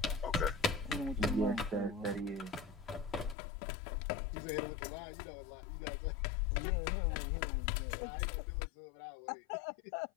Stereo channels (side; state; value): right; drops out; at 3.4 s